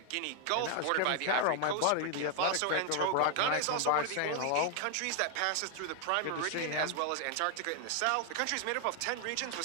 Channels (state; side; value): different; both; correlation 0.00